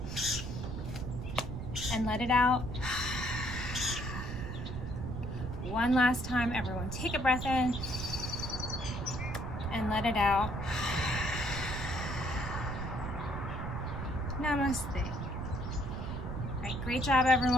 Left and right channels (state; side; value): noise; right; rumble, 6 dB below the sound